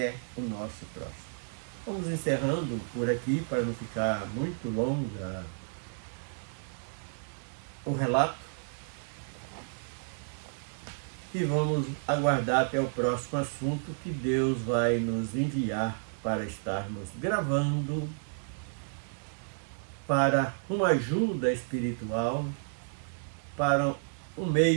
o nosso próximo. Vamos encerrando por aqui para não ficar muito longa o relato e vamos aguardar até o próximo assunto que Deus vai nos enviar para estarmos gravando para uma ajuda espiritual, para um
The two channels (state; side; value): silent; left; digital silence